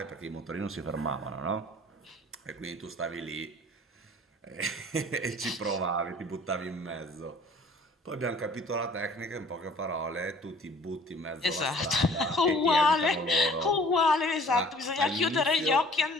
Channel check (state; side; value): normal; both; correlation 0.52